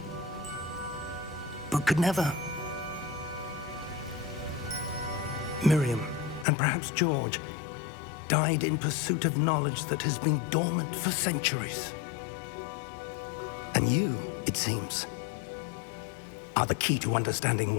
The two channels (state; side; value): drops out; right; at 6.5 s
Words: but could never. Miriam, and perhaps George, died in pursuit of knowledge that has been dormant for centuries. And you, it seems, are the key to understanding